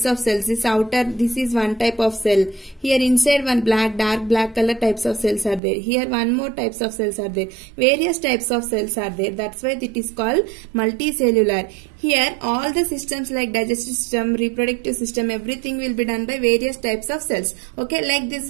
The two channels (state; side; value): drops out; left; at 5.6 s